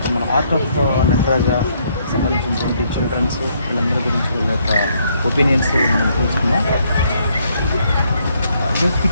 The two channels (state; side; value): inverted; both; correlation -0.70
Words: మన ఆర్ట్ ఆఫ్ నటరాజ సంబంధించినటువంటి చిల్డ్రన్స్ వీళ్ళందరి గురించి వీళ్ళ యొక్క ఒపీనియన్స్ మనం తెలుసుకున్నాం. ఈరోజు